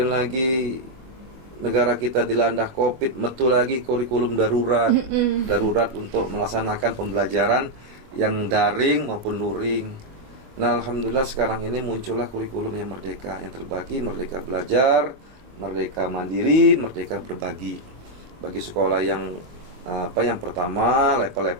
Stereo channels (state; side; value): late; left; 24 ms